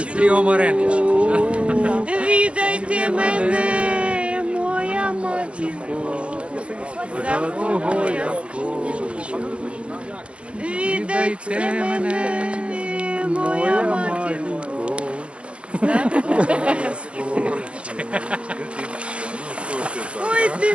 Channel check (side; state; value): left; late; 0.059 ms